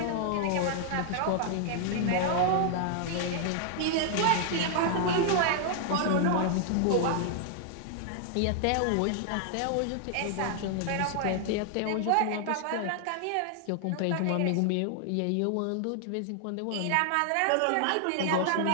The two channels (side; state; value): both; different; correlation -0.01